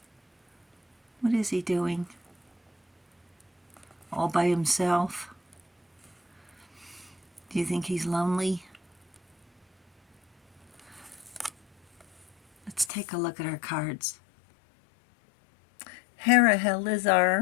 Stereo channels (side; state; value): right; drops out; at 12.9 s